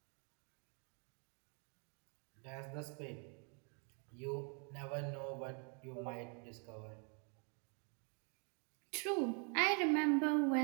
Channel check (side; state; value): left; quieter; 37.8 dB